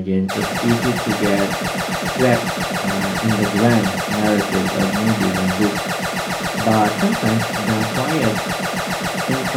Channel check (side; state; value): both; identical; correlation 1.00